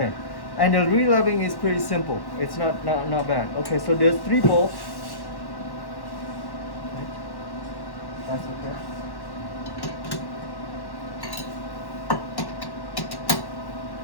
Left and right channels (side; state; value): right; late; 1.1 ms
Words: And the re-leveling is pretty simple. It's not bad. Okay, so there's 3 bolts. That's okay.